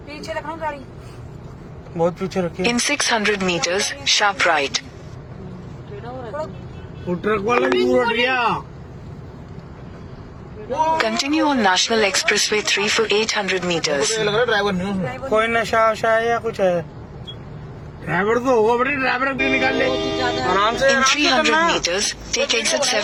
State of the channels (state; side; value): identical; both; correlation 1.00